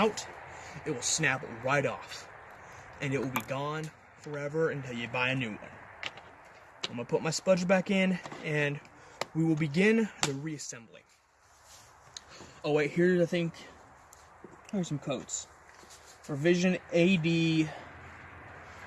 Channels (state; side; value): identical; both; correlation 1.00